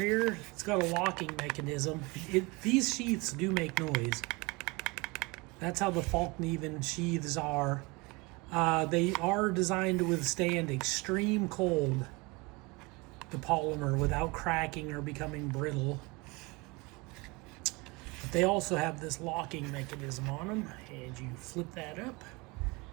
It's got a locking mechanism. These sheaths do make noise. That's how the Fallkniven sheaths are. They are designed to withstand extreme cold, the polymer, without cracking or becoming brittle. But they also have this locking mechanism on them, and you flip that up.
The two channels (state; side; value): quieter; left; 25.9 dB